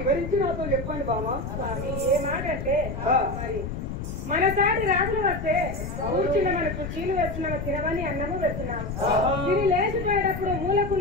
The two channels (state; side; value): noise; left; rumble, 6 dB below the sound